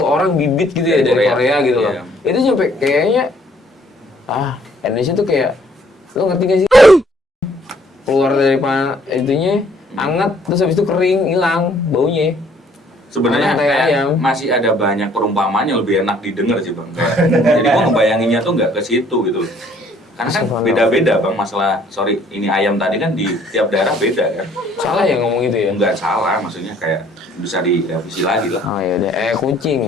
orang bibit gitu ya Dari dari Korea. Korea gitu loh. Iya. Itu sampai kayaknya Indonesia tuh kayak lo ngerti gak sih? Keluar dari itunya anget terus habis itu kering hilang baunya. Sebenarnya Orang kayak kayak ayam. masih ada banyak perumpamaan yang lebih enak didengar sih bang. Jadi gua ngebayanginnya tuh nggak ke situ gitu. Karena kan beda-beda bang masalah. Sorry, ini ayam tadi kan di tiap daerah beda kan. Salah ya ngomong gitu ya? Nggak salah, maksudnya kayak bisa direvisi lagi lah. Oh ya udah,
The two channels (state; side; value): normal; both; correlation 0.61